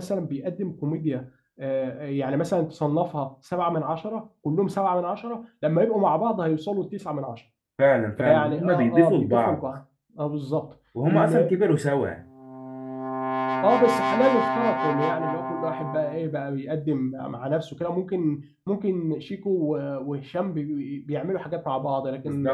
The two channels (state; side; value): identical; both; correlation 1.00